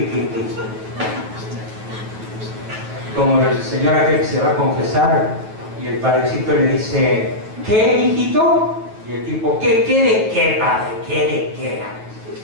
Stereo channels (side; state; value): left; late; 9.2 ms